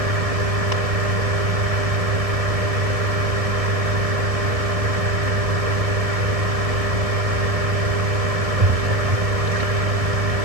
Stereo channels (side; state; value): left; late; 1.7 ms